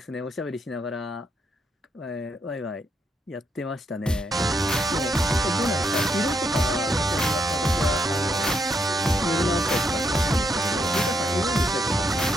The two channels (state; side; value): normal; both; correlation 0.77